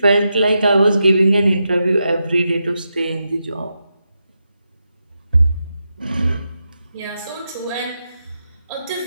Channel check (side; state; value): both; inverted; correlation -0.87